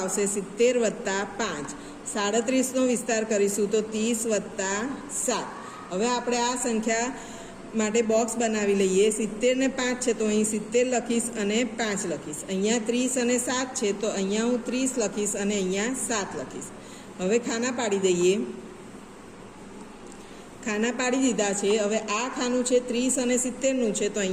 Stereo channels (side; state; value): both; identical; correlation 1.00